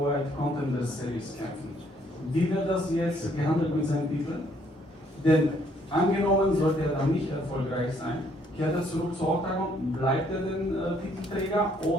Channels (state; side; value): normal; both; correlation 0.66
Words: White Contender Series kämpft, wie wird das jetzt gehandelt mit seinem Titel? Denn angenommen, sollte er dann nicht erfolgreich sein, kehrt er zurück zu Oktagon, bleibt er den Titelträger